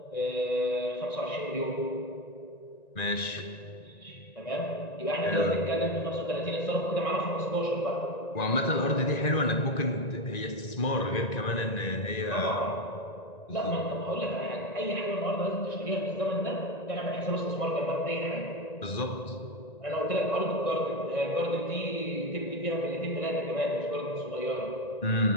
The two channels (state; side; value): late; right; 1.9 ms